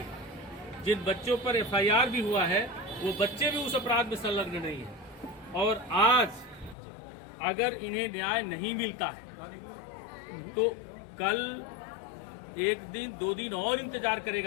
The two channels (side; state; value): right; drops out; at 6.8 s